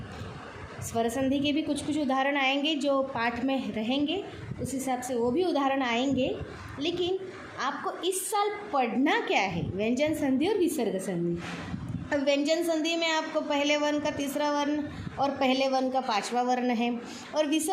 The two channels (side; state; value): both; identical; correlation 1.00